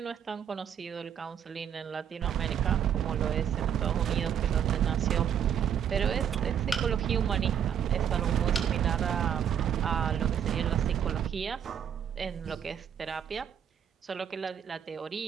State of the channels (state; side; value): quieter; left; 8.8 dB